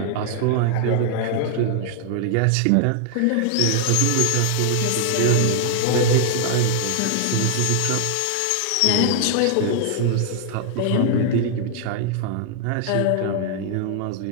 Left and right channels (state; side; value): different; both; correlation 0.00